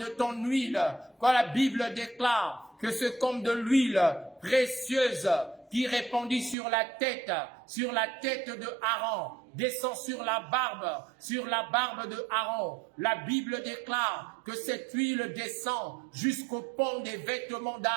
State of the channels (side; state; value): left; drops out; at 6.6 s